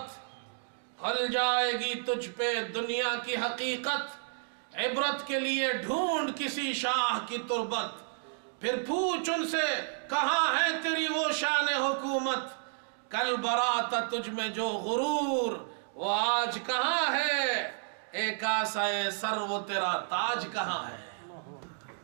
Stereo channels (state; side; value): silent; left; digital silence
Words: کھل جائے گی تجھ پہ دنیا کی حقیقت۔ عبرت کے لیے ڈھونڈ کسی شاہ کی تربت، پھر پوچھ ان سے کہاں ہے تیری وہ شان حکومت۔ کل برات تجھ میں جو غرور، وہ آج کہاں ہے؟ ایک آسائے سر وہ تیرا تاج کہاں ہے؟